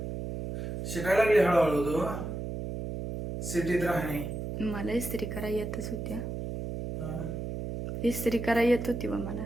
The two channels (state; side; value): noise; right; hum, 5 dB below the sound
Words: शिकायला लागली हळूहळू तू सिटीत राहणे. मला इस्त्री करा येतच होत्या. हा. इस्त्री करा येत होती बा मला.